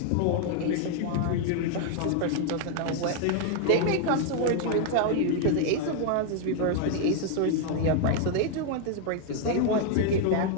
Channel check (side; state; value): both; different; correlation 0.00